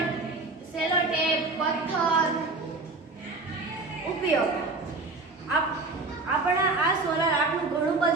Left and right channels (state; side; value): quieter; left; 3.5 dB